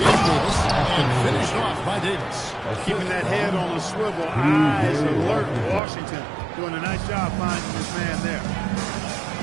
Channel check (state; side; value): drops out; left; at 5.8 s